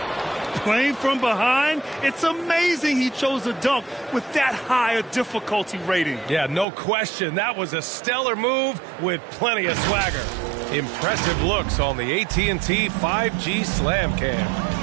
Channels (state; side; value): drops out; left; at 6.7 s